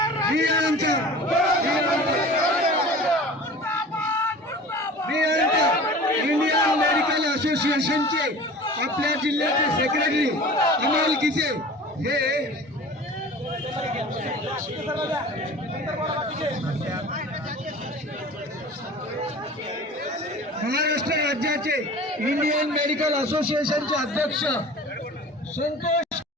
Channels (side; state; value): both; normal; correlation 0.40